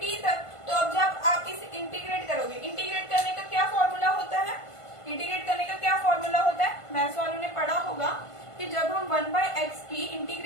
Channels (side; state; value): right; late; 1.5 ms